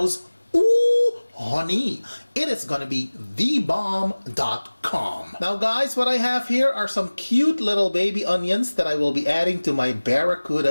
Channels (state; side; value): inverted; both; correlation -1.00